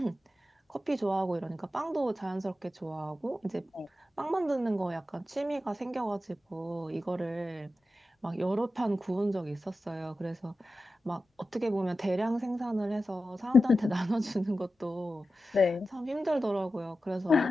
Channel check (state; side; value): normal; both; correlation 0.93